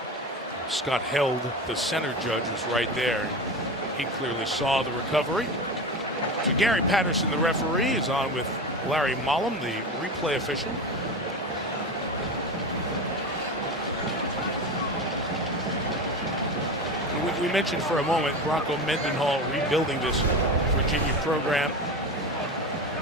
Scott Held, the center judge, was right there. He clearly saw the recovery. So Gary Patterson, the referee, is on with Larry Mollum, the replay official. We mentioned for a moment Bronco Mendenhall rebuilding this Virginia program.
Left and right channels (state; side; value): normal; both; correlation 0.25